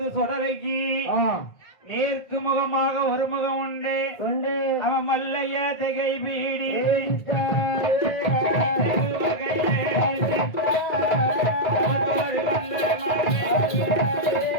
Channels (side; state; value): right; late; 1.8 ms